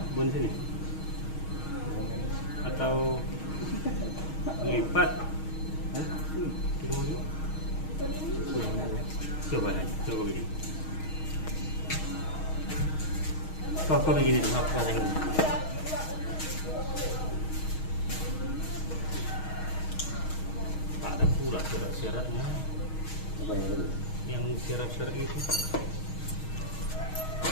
Bon sini. Atau lipat. Coba begini. Kau begini tuh apa yang ini? Tak ada pula syarat-syaratnya. Apa yang itu? Yang syarat-syarat itu.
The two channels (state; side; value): late; right; 6.4 ms